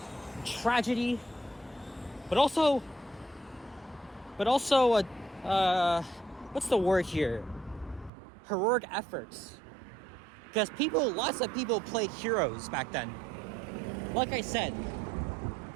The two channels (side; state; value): left; drops out; at 8.1 s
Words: and tragedy, but also what's the word here? Heroic efforts. Because lots of people played heroes back then. Like I said,